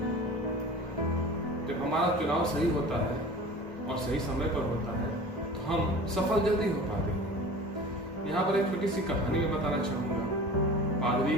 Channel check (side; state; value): both; normal; correlation 0.39